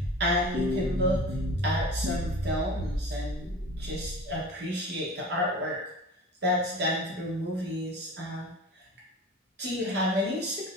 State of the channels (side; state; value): both; normal; correlation 0.37